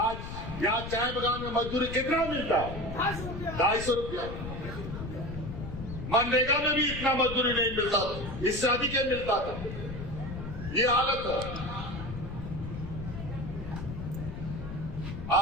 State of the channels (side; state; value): left; noise; rumble, 8 dB below the sound